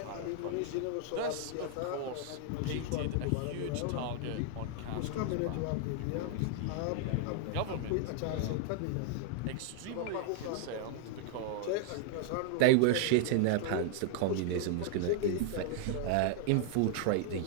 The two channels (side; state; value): both; different; correlation 0.00